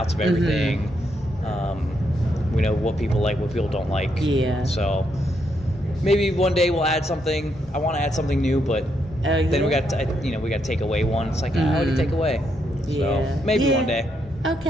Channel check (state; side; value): normal; both; correlation 0.78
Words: of everything. We know what people like, what people don't like. Yeah. So maybe one day we'll add something. I want to add something new, but then we got to take away one. It's like what do you take away? Yeah. So maybe one day.